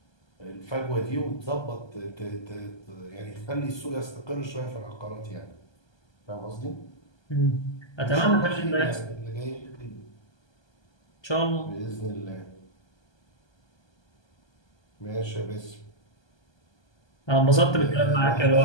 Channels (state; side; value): late; right; 1.3 ms